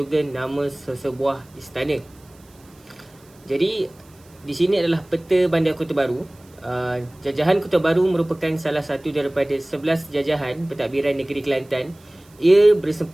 nama sesebuah istana. Jadi, di sini adalah peta Bandar Kota Baru. Jajahan Kota Baru merupakan salah satu daripada 11 jajahan pentadbiran negeri Kelantan. Ia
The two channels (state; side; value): noise; right; hiss, 29 dB below the sound